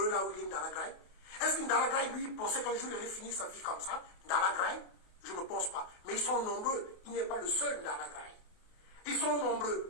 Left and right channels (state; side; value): late; right; 28 ms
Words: là où il est Ndala Graï? Est-ce que Ndala Graï, lui, pensait qu'un jour il allait finir sa vie comme ça? Ndala Graï? Je ne pense pas. Mais ils sont nombreux. Il n'est pas le seul Ndala Graï. Ils sont